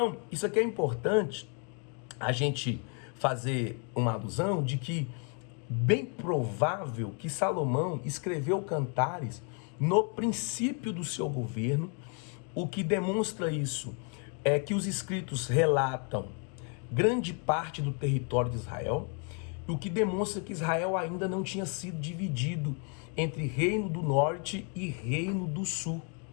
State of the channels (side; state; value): right; quieter; 39.0 dB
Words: isso aqui é importante a gente fazer uma alusão de que bem provável que Salomão escreveu Cantares no princípio do seu governo. O que demonstra isso é que os escritos relatam grande parte do território de Israel, o que demonstra que Israel ainda não tinha sido dividido entre Reino do Norte e Reino do Sul,